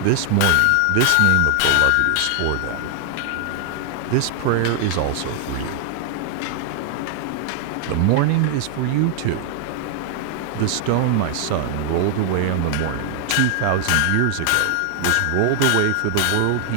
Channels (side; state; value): both; different; correlation 0.00